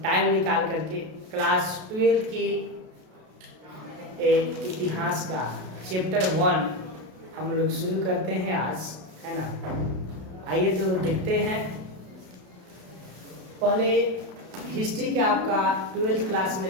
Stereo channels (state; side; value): late; left; 32 ms